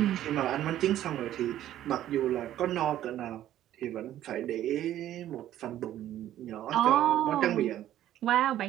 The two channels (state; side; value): quieter; left; 12.5 dB